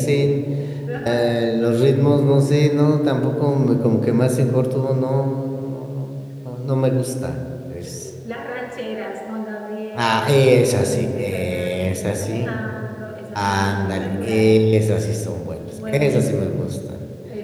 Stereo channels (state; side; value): identical; both; correlation 1.00